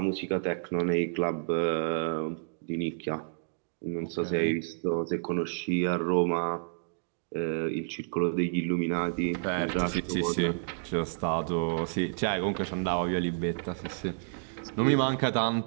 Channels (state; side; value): silent; left; digital silence